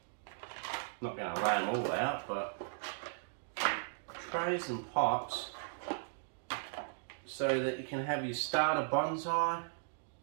Not going to lay them all out, but trays and pots so that you can have your starter bonsai.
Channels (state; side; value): silent; left; digital silence